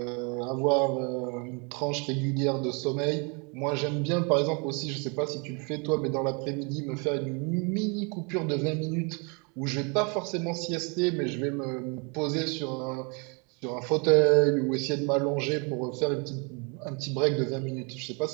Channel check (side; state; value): left; quieter; 33.1 dB